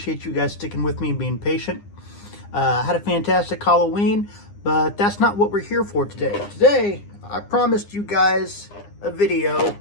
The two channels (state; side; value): late; right; 9.8 ms